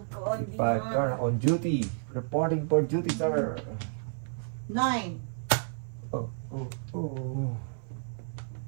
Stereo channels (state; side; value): silent; left; digital silence